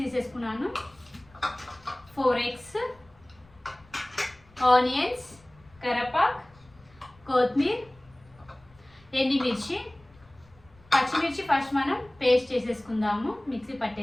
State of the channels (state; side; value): noise; left; rumble, 28 dB below the sound